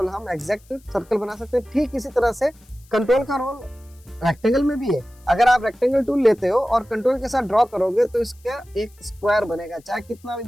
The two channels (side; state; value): left; noise; hiss, 29 dB below the sound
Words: हम एग्जैक्ट सर्कल बना सकते हैं। ठीक इसी तरह से कंट्रोल का रोल रेक्टेंगल में भी है। अगर आप रेक्टेंगल टूल लेते हो और कंट्रोल के साथ ड्रॉ करोगे तो इसका एक स्क्वायर बनेगा, चाहे कितना भी